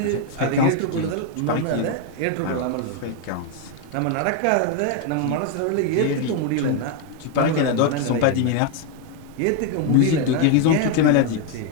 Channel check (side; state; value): both; different; correlation 0.01